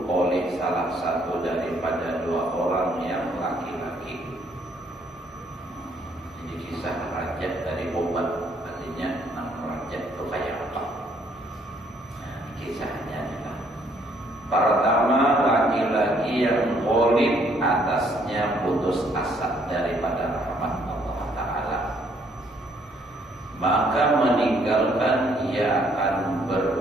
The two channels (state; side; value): normal; both; correlation 0.66